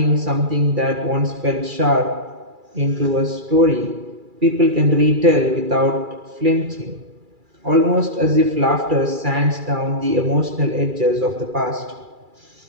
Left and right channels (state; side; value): late; left; 2.3 ms